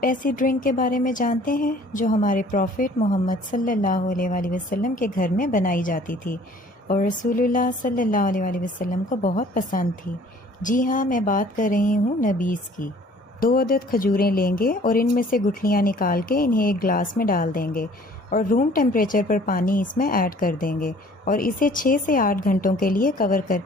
ایسی ڈرنک کے بارے میں جانتے ہیں جو ہمارے پروفٹ محمد صلی اللہ علیہ وآلہ وسلم کے گھر میں بنائی جاتی تھی اور رسول اللہ صلی اللہ علیہ وآلہ وسلم کو بہت پسند تھی؟ جی ہاں، میں بات کر رہی ہوں نبیذ کی۔ 2 عدد کھجوریں لیں گے اور ان میں سے گٹھلیاں نکال کے انہیں ایک گلاس میں ڈال دیں گے اور روم ٹیمپریچر پر پانی اس میں ایڈ کر دیں گے اور اسے 6 سے 8 گھنٹوں کے لیے کور کر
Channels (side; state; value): both; normal; correlation 0.53